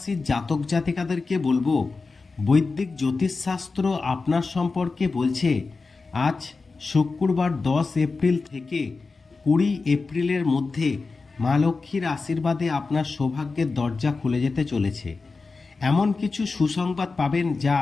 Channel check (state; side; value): quieter; right; 4.1 dB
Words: জাতক জাতিকাদেরকে বলবো, বৈদিক জ্যোতিষশাস্ত্র আপনার সম্পর্কে বলছে আজ শুক্রবার 10 এপ্রিল থেকে 20 এপ্রিলের মধ্যে মা লক্ষ্মীর আশীর্বাদে আপনার সৌভাগ্যের দরজা খুলে যেতে চলেছে। এমন কিছু সুসংবাদ পাবেন যা